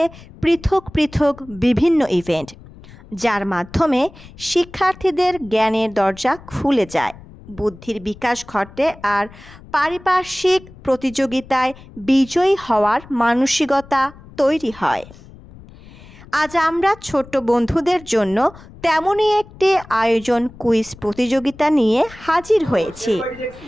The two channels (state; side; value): noise; left; rumble, 20 dB below the sound